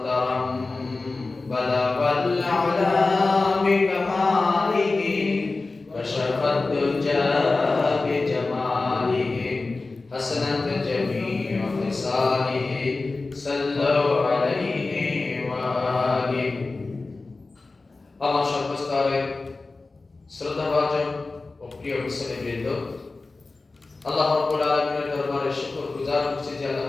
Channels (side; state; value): right; quieter; 3.5 dB